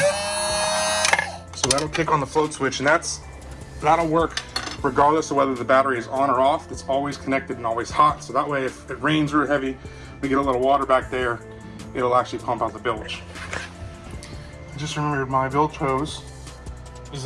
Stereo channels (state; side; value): identical; both; correlation 1.00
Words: So that'll kick on the float switch, and that'll work regardless of whether the battery is on or off. It's always connected and always hot. So that way, if it rains real heavy, we get a little water back there, it'll actually pump out the bilge. I just remembered my bilge hose